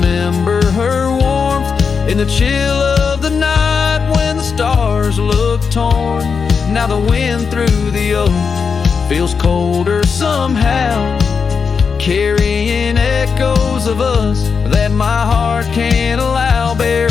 her warmth in the chill of the night when the stars look torn. Now the wind through the oak feels colder somehow, carrying echoes of us that my heart can't allow.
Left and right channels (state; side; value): quieter; right; 5.7 dB